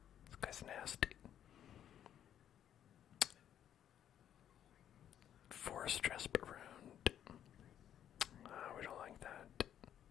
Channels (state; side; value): quieter; right; 10.2 dB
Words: This guy's nasty. Forest dress around. We don't like that.